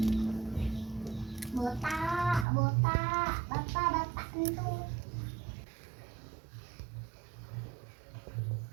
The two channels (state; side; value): drops out; left; at 2.5 s